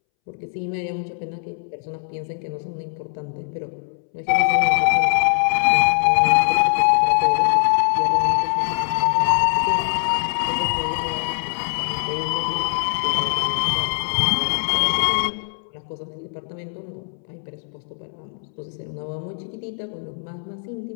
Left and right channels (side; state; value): right; silent; 64 dB below the other